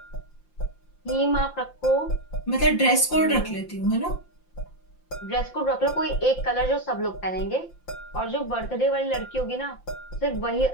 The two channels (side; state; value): right; late; 5.8 ms